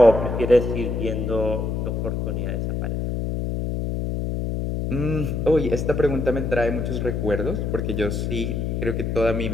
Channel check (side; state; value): left; noise; hum, 1 dB below the sound